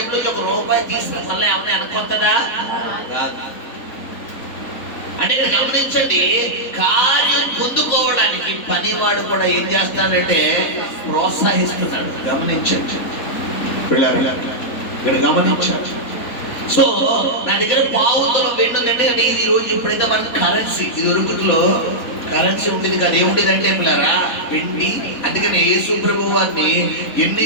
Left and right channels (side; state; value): right; late; 3.9 ms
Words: ₹1 తీసుకుని మళ్ళీ ఏమన్నా వెనకొస్తుందా? కాదు. అంటే గమనించండి, కార్యం పొందుకోవడానికి పనివాడు కూడా ఏం చేస్తాడంటే ప్రోత్సహిస్తున్నాడు. గమనించండి ఇక్కడ గమనించాడు. సో నా దగ్గర పావుతులం వెండి ఉందంటే అంటే ఇది రోజు ఇప్పుడైతే మనకు కరెన్సీ, ఇది ఒరుగుట్లో కరెన్సీ ఉండేది కదా. ఏముండేది అంటే పిల్లరా వెండి. అందుకని యేసు ప్రభువు వారిని